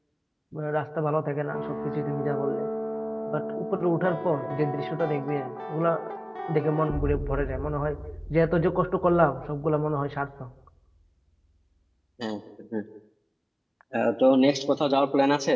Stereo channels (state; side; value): identical; both; correlation 1.00